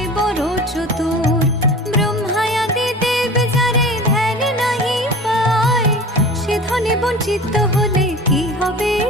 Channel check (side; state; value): both; normal; correlation 0.38